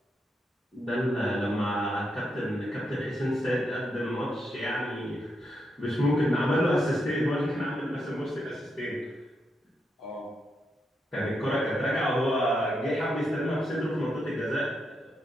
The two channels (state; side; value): normal; both; correlation 0.82